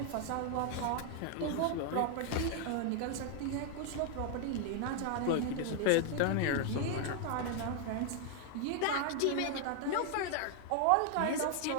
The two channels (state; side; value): different; both; correlation 0.00